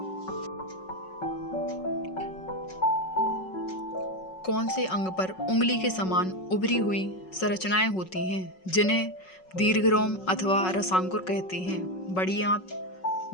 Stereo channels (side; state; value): right; late; 5.4 ms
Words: कौन से अंग पर उंगली के समान उभरी हुई संरचनाएं होती हैं जिन्हें दीर्घरोम अथवा रसांकुर कहते हैं? बड़ी आंत,